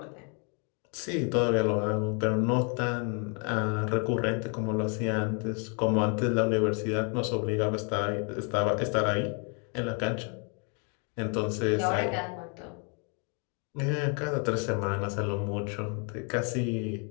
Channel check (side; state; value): right; quieter; 38.1 dB